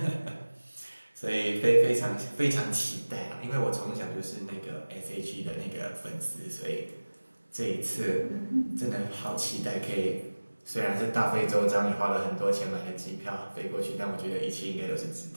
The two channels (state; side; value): inverted; both; correlation -1.00